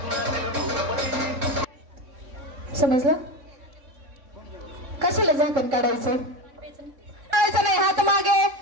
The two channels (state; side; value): late; left; 3.7 ms